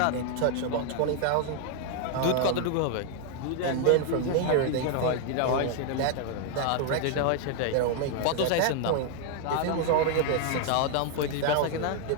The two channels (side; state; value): both; different; correlation 0.00